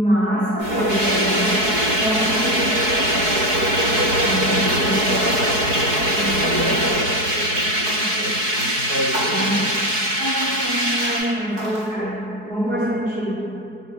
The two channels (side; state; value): left; late; 4.7 ms